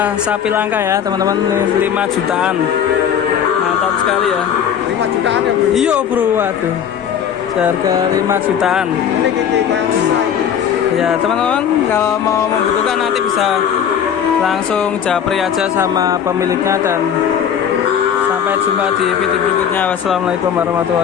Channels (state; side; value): quieter; right; 8.5 dB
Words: Sapi langka ya teman-teman, 5 jutaan. Mantap sekali ya. 5 jutaan ya bro? Iya bro, waduh. Harga 5 jutaan. Ini kayak susah. Ya teman-teman, kalau mau membutuhkan nanti bisa langsung japri aja sama pemiliknya, dan sampai jumpa di video berikutnya. Wassalamualaikum